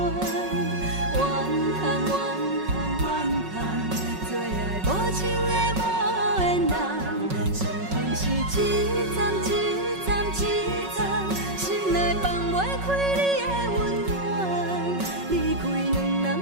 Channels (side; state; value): left; late; 5.4 ms